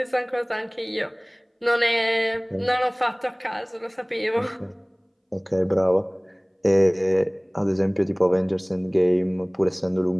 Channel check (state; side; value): identical; both; correlation 1.00